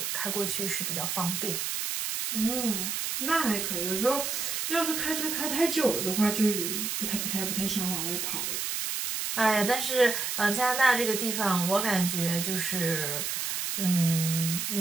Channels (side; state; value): right; noise; hiss, 2 dB below the sound